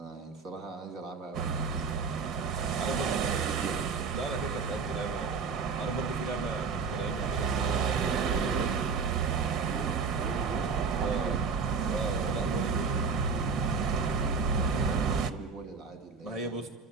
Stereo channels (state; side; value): quieter; left; 5.2 dB